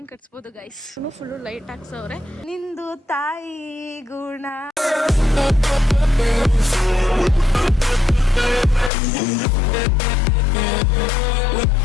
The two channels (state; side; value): drops out; right; at 8.9 s